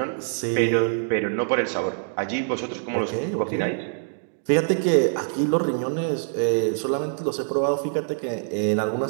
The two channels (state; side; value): silent; left; digital silence